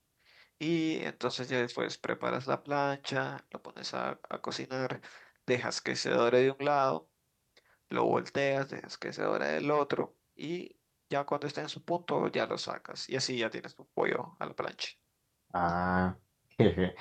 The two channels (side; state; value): both; identical; correlation 1.00